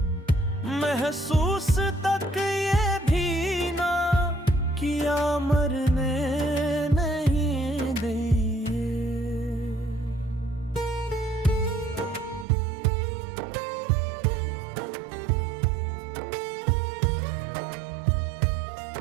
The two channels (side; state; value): left; drops out; at 12.5 s